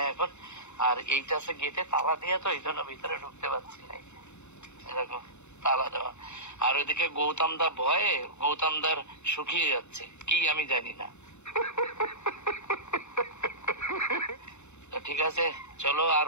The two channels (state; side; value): late; right; 0.82 ms